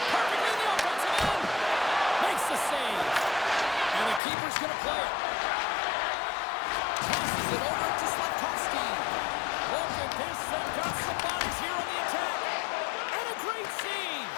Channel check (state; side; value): drops out; right; at 4.2 s